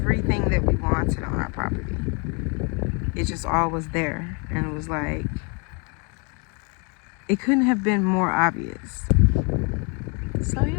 that we wanted on our property, it just all was there. And it was like, it couldn't have been more obvious. So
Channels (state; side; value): quieter; right; 34.2 dB